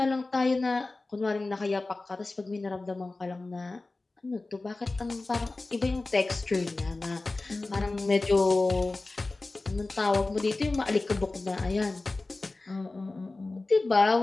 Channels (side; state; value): right; quieter; 3.3 dB